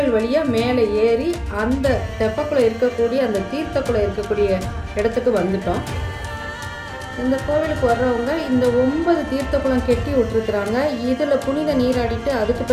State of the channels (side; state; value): both; identical; correlation 1.00